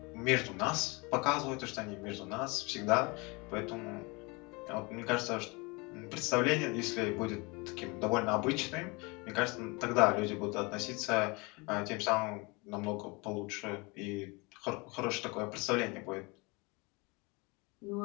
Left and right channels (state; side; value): quieter; right; 27.3 dB